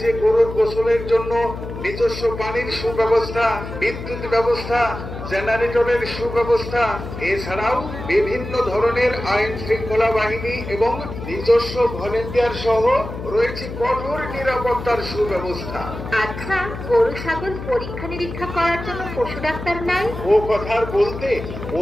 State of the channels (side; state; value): left; noise; hum, 9 dB below the sound